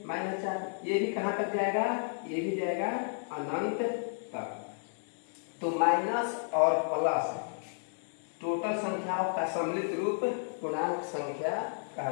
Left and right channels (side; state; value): right; silent; 56 dB below the other